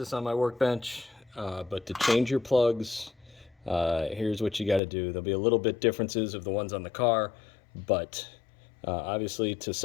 on my workbench, but to change your plugs, here's what you got to do. There'll be a little bit differences of the ones on the car, but obviously to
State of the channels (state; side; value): drops out; right; at 4.8 s